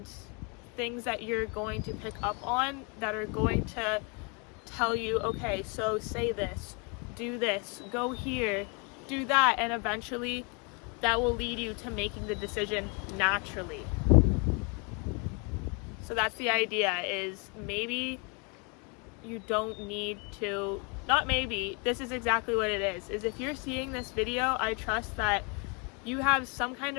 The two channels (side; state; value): right; quieter; 33.2 dB